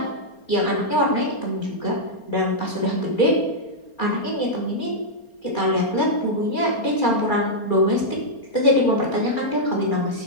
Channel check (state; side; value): late; right; 4.3 ms